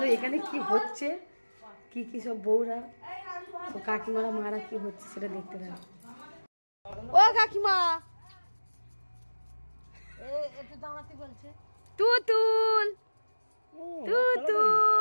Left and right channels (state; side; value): inverted; both; correlation -1.00